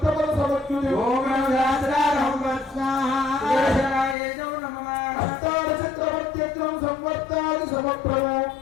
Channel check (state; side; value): drops out; right; at 4.2 s